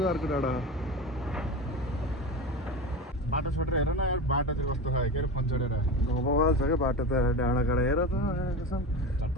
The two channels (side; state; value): both; normal; correlation 0.25